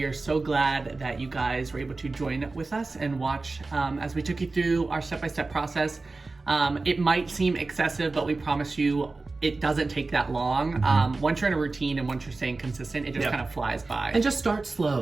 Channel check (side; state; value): left; quieter; 3.5 dB